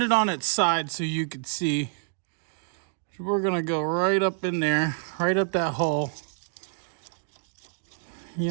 it on its side so you could see. So we're gonna go right up in there, right up that hole.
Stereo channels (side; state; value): left; silent; digital silence